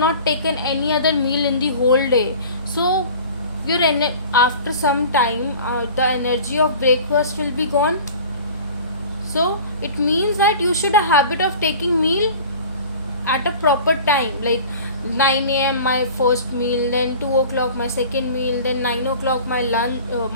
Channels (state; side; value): inverted; both; correlation -0.42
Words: taken any other meal in the whole day, so your after some time the energy of breakfast will be gone. So it means that you should have a habit of taking meal at a proper time, like 9 a.m. my first meal, then 2 o'clock my second meal, then 9 o'clock my lunch,